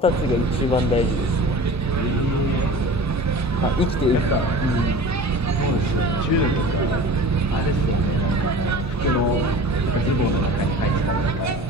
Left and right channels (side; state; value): both; normal; correlation 0.38